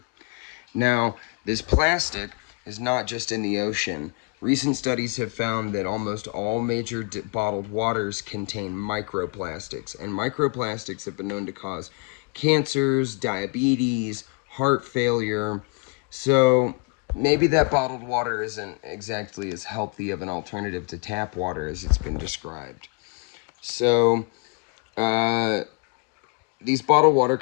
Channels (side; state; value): right; quieter; 30.4 dB